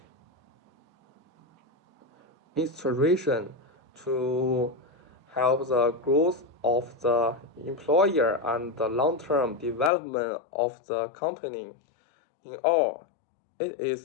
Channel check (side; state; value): right; drops out; at 9.9 s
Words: inspiration to help the growth of the employer and the long-term development of the company. In all, it